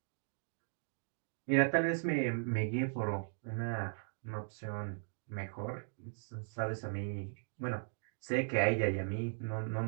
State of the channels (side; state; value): left; silent; digital silence